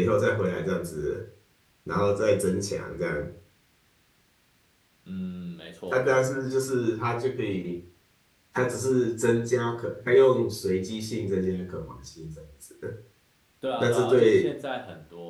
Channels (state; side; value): identical; both; correlation 1.00